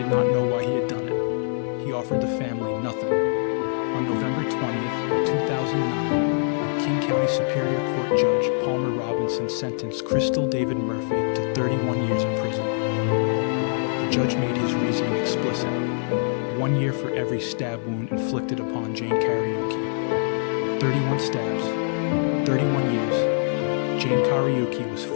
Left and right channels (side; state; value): right; silent; digital silence